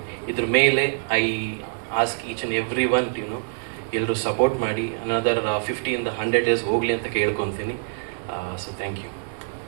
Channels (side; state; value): left; silent; 62 dB below the other